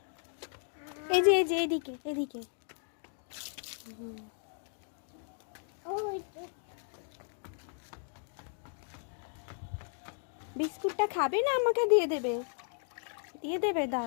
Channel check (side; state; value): right; silent; 54 dB below the other